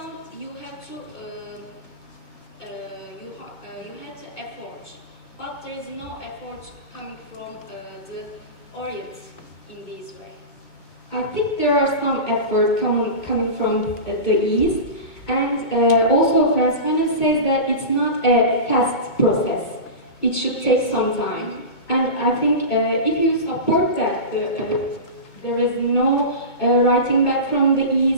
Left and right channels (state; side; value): late; right; 2.2 ms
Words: you have to effort. But there is no effort coming from the Orient in this way. I think there are some effort coming from the East, and also Frantz Fanon says that it's not a fast process. It should take some time. And I think if you support that, there is no writing back from the